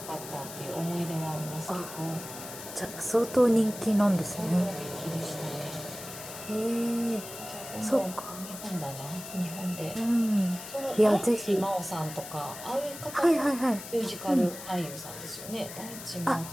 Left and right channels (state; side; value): noise; left; hiss, 12 dB below the sound